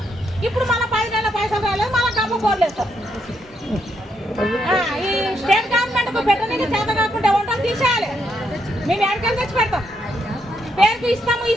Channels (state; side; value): normal; both; correlation 0.77